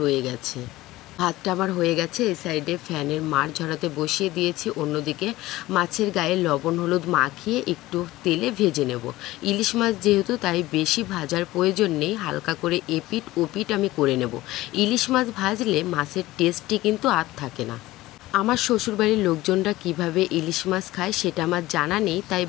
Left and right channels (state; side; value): quieter; right; 17.5 dB